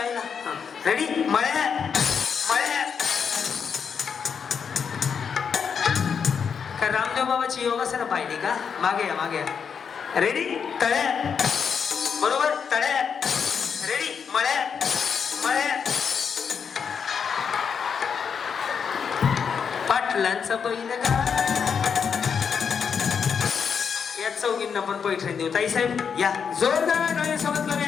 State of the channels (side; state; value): right; quieter; 6.7 dB